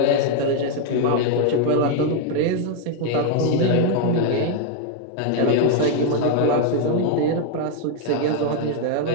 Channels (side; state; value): both; different; correlation 0.00